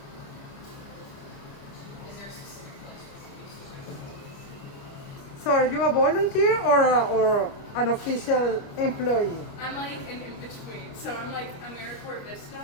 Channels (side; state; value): right; late; 28 ms